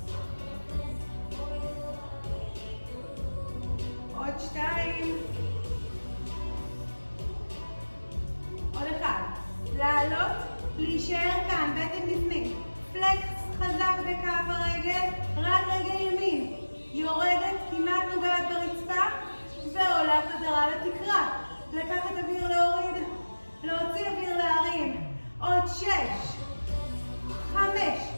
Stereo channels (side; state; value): both; inverted; correlation -1.00